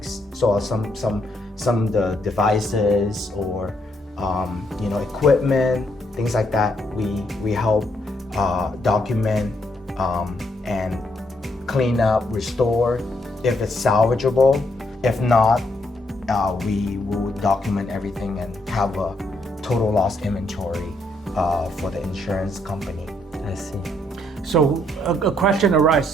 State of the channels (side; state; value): both; normal; correlation 0.74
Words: So some of the devices or equipment, things like that. We help document and clean up, restore if it's salvageable. If not, we will document everything and have a total loss inventory for the insurance company. I see. So a question arises.